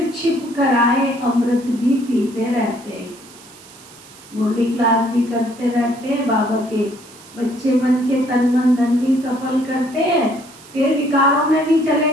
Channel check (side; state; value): right; noise; hiss, 22 dB below the sound